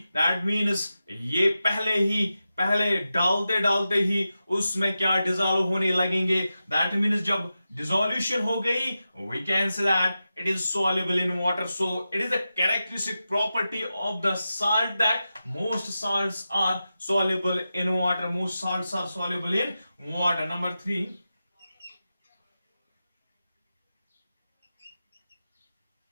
That means ये पहले डालते ही उसमें क्या dissolve होने लगेंगे. That means जब dissolution हो गई, we can say that it is soluble in water. So it is a characteristic property of the salt that most salts are soluble in water. Most salts are soluble in water. Number 3,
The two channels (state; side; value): inverted; both; correlation -0.92